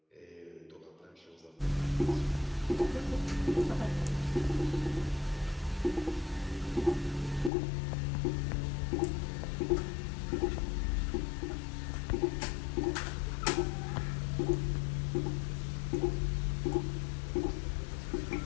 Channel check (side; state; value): right; drops out; at 7.5 s